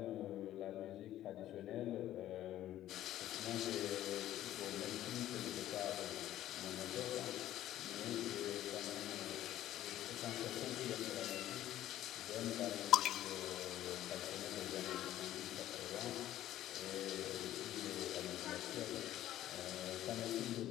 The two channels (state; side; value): quieter; right; 13.2 dB